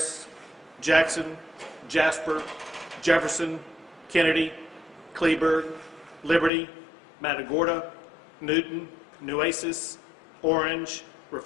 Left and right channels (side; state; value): right; drops out; at 6.5 s